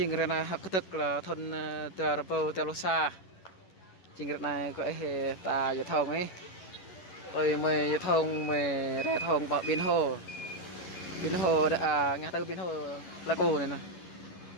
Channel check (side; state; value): right; late; 11 ms